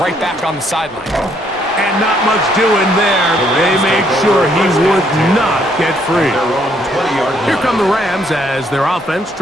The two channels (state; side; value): normal; both; correlation 0.69